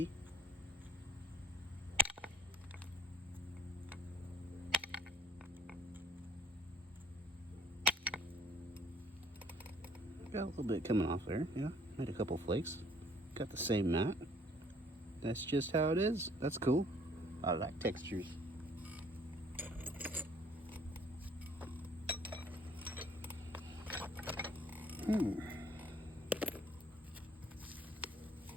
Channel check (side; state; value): both; normal; correlation 0.58